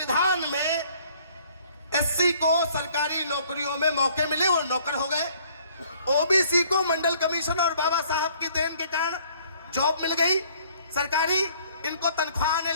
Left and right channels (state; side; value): inverted; both; correlation -0.59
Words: में एससी को सरकारी नौकरियों में मौके मिले, वो नौकर हो गए। ओबीसी को मंडल कमीशन और बाबा साहब की देन के कारण जॉब मिल गई सरकारी, इनको तनख्वाह आने